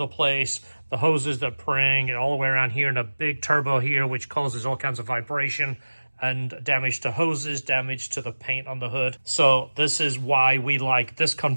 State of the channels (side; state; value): both; inverted; correlation -1.00